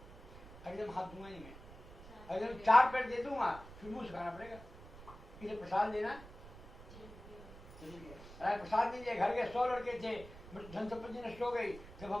अगर हाथ दूंगा नहीं मैं, अगर 4 पैर दे दूंगा फिर मुंह से खाना पड़ेगा। इसे प्रसाद देना अरे प्रसाद नहीं दिया। घर के 100 लड़के थे, धन संपत्ति नष्ट हो गई। जब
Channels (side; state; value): right; noise; rumble, 16 dB below the sound